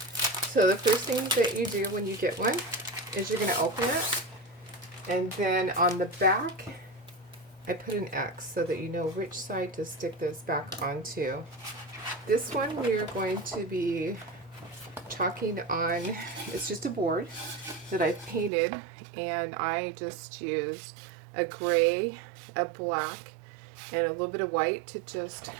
So the first thing that you do when you get one is you're going to open it, and then on the back I put an X so that you know which side to stick this back onto. This one we're going to be chalking on, it's just a board that I've painted, and I just used a gray, a black, and a little bit of white to just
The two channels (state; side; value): drops out; left; at 18.5 s